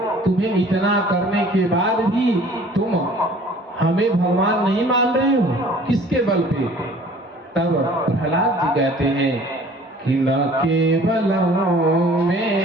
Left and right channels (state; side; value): normal; both; correlation 0.51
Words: तुम्हें इतना करने के बाद भी तुम हमें भगवान नहीं मान रहे हो, किसके बल पे? तब प्रहलाद जी कहते हैं कि न केवलं